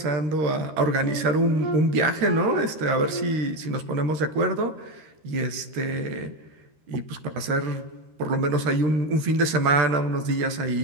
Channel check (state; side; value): late; left; 13 ms